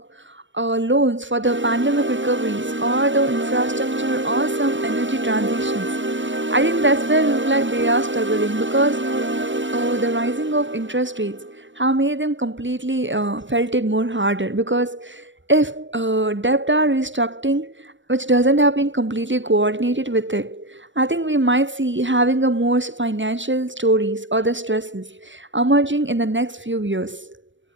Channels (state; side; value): late; left; 0.55 ms